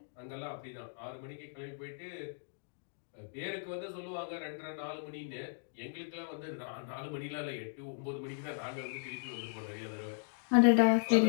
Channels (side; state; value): right; silent; digital silence